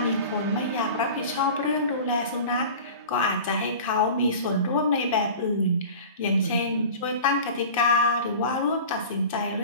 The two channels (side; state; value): both; inverted; correlation -0.37